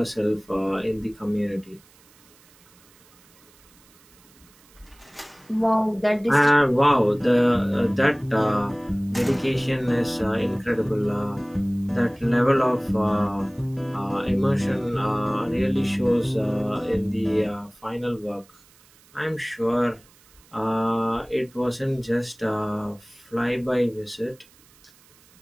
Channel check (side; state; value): right; noise; hiss, 28 dB below the sound